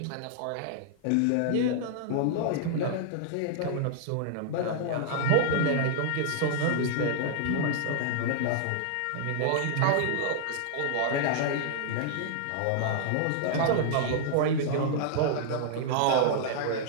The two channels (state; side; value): different; both; correlation -0.01